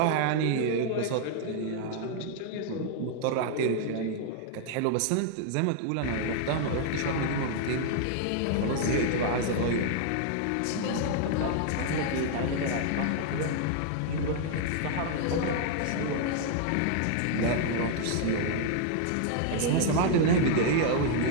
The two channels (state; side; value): different; both; correlation -0.01